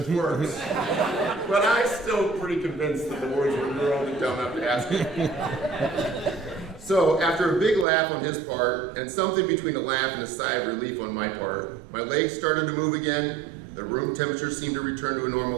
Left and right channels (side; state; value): left; drops out; at 7.9 s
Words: words. But I'm still pretty convinced that the words were, you were only dumb enough to ask it. So after a big laugh on his part, and something between a laugh and a sigh of relief on my part, my legs started to move again, the room temperature seemed to return to a